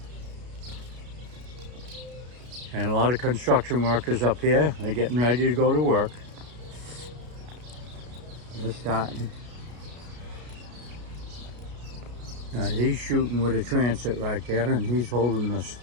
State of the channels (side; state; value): left; late; 33 ms